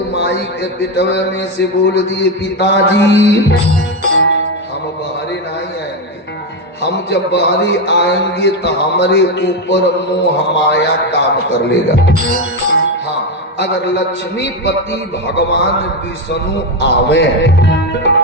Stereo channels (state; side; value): normal; both; correlation 0.10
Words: माई के पिटवे में से बोल दिए पिताजी हम बाहरे नहीं आएंगे, हम जब बाहरी आएंगे तो हमारे ऊपर मोह माया काम कर लेगा। हाँ अगर लक्ष्मीपति भगवान विष्णु आवे